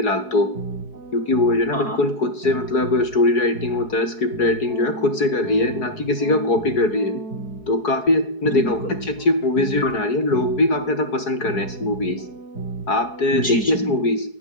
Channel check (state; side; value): late; right; 4.7 ms